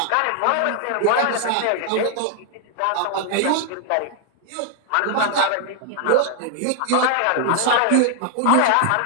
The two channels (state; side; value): different; both; correlation 0.00